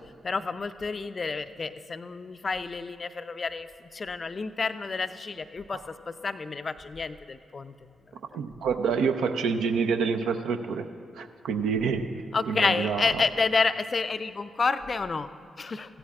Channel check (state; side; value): normal; both; correlation 0.77